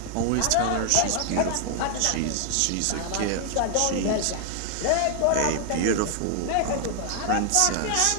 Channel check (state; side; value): different; both; correlation 0.00